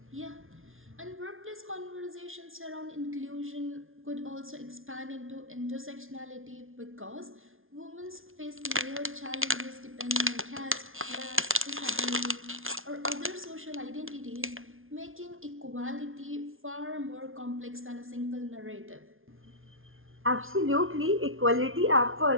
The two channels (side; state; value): left; late; 0.60 ms